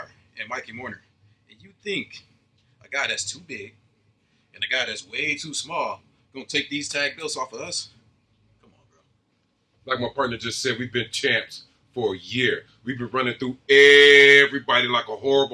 and Mikey Mourner. And you think a guy that's too big and a guy that's way too small gonna take these tag belts off of us? Come on, bro. Like my partner just said, we've been champs for a year. We've been running through everybody like a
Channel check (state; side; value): identical; both; correlation 1.00